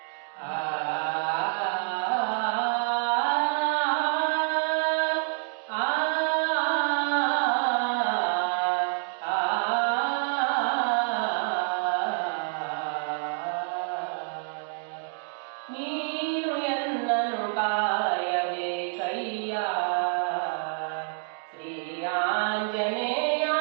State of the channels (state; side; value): silent; left; 60 dB below the other